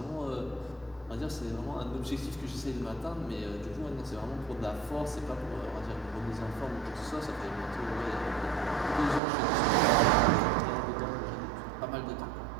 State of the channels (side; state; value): left; drops out; at 9.2 s